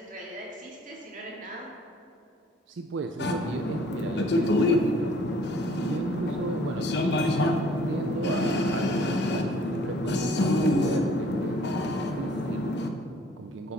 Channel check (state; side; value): normal; both; correlation 0.57